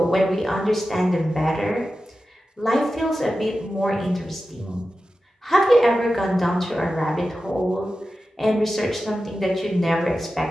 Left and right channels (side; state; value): both; normal; correlation 0.93